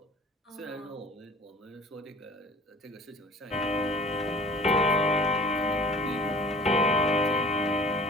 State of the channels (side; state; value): both; normal; correlation 0.46